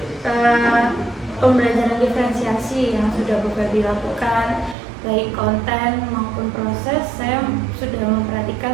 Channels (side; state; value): left; drops out; at 4.8 s